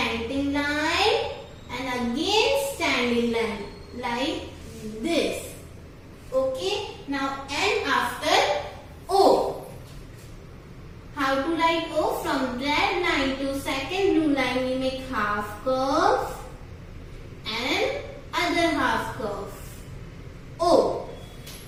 line, and again standing line like this. Okay, now N after O. How to write O? From red line to second blue line we make half curve and other half curve. O.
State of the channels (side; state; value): both; identical; correlation 1.00